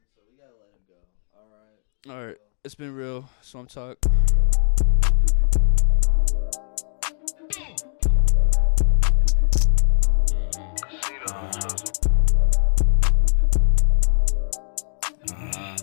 so we gotta let him go. All right. See All right. y'all. It's been real. Deuces. Swamp Talk.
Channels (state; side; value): silent; right; 57 dB below the other